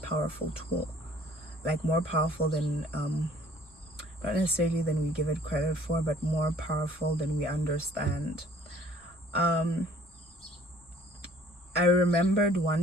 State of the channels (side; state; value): both; normal; correlation 0.55